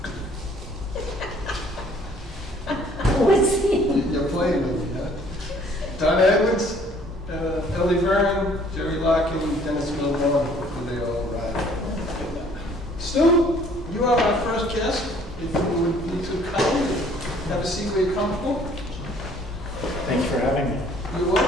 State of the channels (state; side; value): normal; both; correlation 0.58